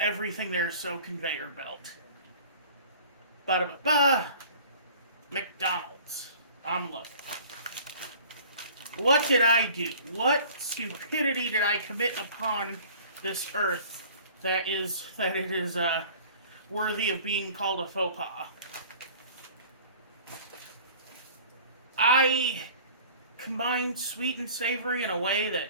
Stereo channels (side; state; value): both; inverted; correlation -0.47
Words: there is so conveyor belt. Ba-da-ba-ba. McDonald's. I'm looking. What did I do? What stupidity did I commit upon this earth that it is worthy of being called a faux pas? I combined sweet and savory in a way